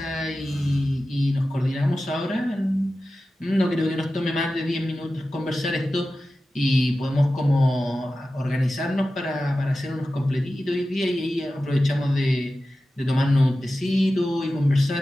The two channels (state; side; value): normal; both; correlation 0.94